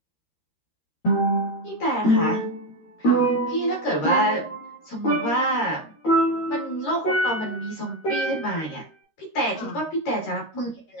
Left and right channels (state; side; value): late; right; 13 ms